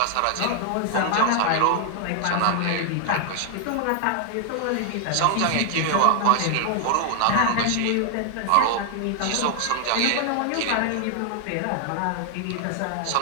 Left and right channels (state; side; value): different; both; correlation 0.00